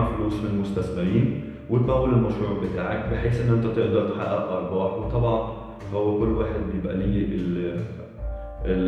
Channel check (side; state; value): both; identical; correlation 1.00